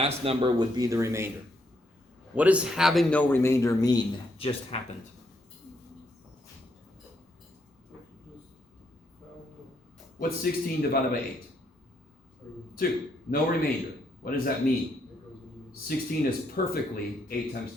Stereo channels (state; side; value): normal; both; correlation 0.75